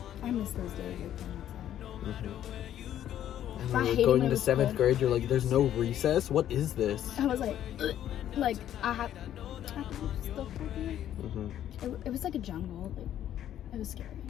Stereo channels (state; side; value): quieter; right; 11.2 dB